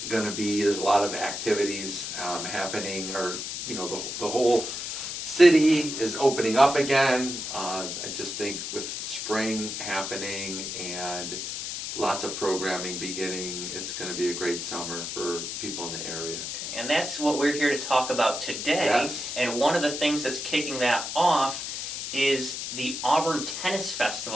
going to be, there's a lot of activities happening, or the whole city is opening up again. I just think with spring happening and lots of programming beginning, it's going to be a great summer for people in the area. Okay. And that's what we're here to talk about today. Yes. And one of the things that's kicking that off is the Auburn Tennis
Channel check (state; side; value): noise; left; hiss, 5 dB below the sound